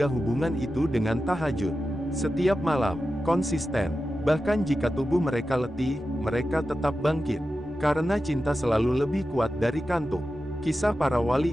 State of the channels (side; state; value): both; normal; correlation 0.92